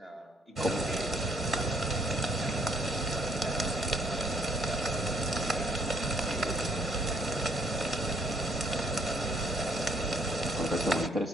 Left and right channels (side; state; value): both; normal; correlation 0.67